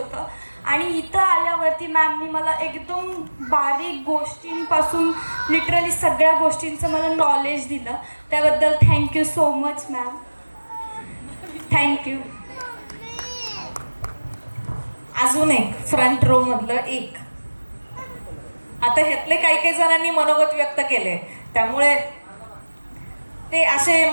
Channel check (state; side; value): inverted; both; correlation -1.00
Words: आणि इथं आल्यावरती मॅमनी मला एकदम बारीक गोष्टींपासून लिटरली सगळ्या गोष्टींचं मला नॉलेज दिलं. त्याबद्दल thank you so much ma'am. Thank you. अजून एक फ्रंट रो मधलं एक. आता ह्यातले काही जणांनी मनोगत व्यक्त केले, त्यामुळे ते असे